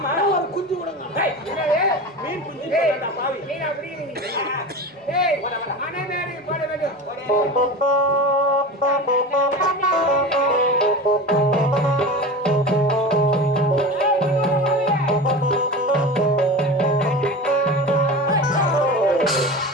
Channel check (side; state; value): both; normal; correlation 0.30